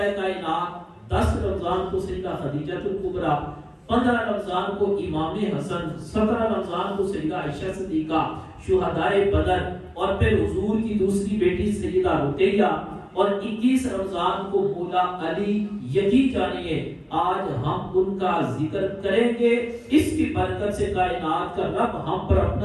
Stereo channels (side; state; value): both; identical; correlation 1.00